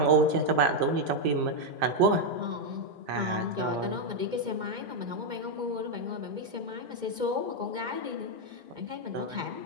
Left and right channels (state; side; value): late; left; 2.2 ms